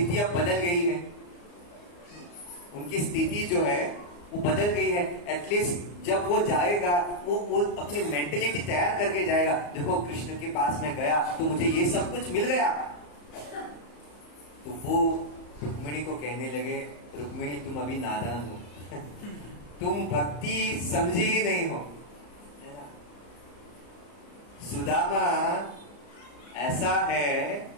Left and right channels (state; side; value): late; right; 34 ms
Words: अब बदल गई है, उनकी स्थिति जो है वो बदल गई है। एटलीस्ट जब वो जाएगा वो अपनी मेंटेलिटी तैयार करके जाएगा। देखो कृष्ण के पास में गया तो मुझे ये सब कुछ मिल गया। तो वो रुक्मिणी को कहने लगे, रुक्मिणी तुम अभी नादान हो, तुम भक्ति समझी ही नहीं हो। सुदामा ऐसा है